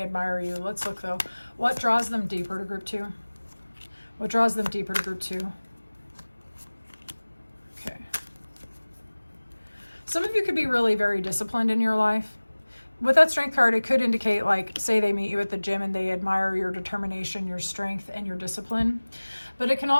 admire you. Let's look though. What draws them deeper to group two? What draws them deeper to group two? Okay. Some of you could be really very disciplined in your life. With that strength card, it could indicate, like, say they meet you at the gym and they admire your determination, your strength, and your discipline. But it can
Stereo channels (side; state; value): both; inverted; correlation -1.00